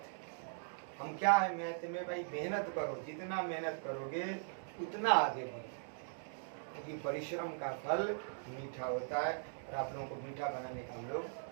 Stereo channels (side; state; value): left; silent; digital silence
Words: हम क्या है मैथ में भाई, मेहनत करो, जितना मेहनत करोगे उतना आगे बढ़ो, क्योंकि परिश्रम का फल मीठा होता है। और आप लोगों को मीठा बनाने का हम लोग